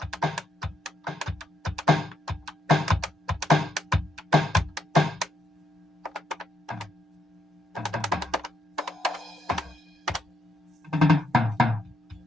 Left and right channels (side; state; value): both; normal; correlation 0.78